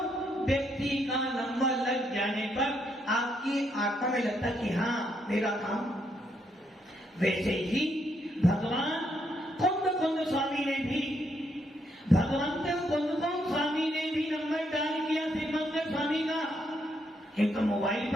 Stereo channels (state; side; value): normal; both; correlation 0.75